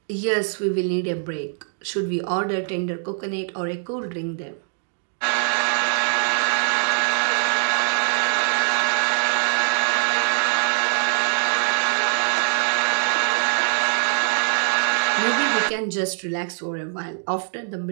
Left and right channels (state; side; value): silent; left; 58 dB below the other